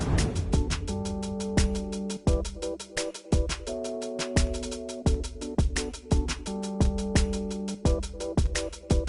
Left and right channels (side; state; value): both; identical; correlation 1.00